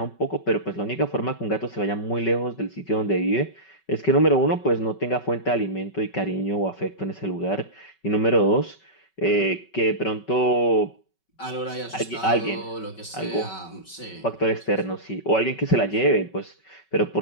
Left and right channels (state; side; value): late; right; 5.3 ms